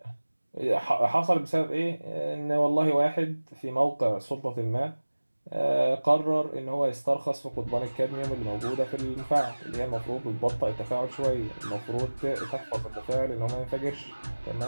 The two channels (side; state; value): both; inverted; correlation -1.00